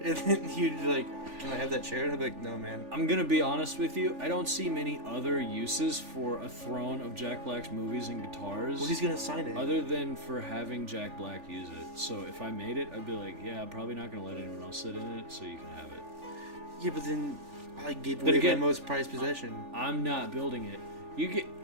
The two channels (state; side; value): late; left; 3.4 ms